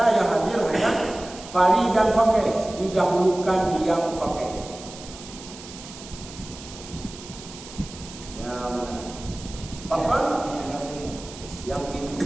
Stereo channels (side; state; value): right; noise; hiss, 15 dB below the sound